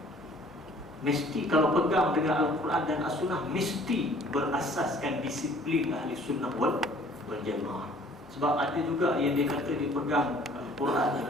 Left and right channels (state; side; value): normal; both; correlation 0.54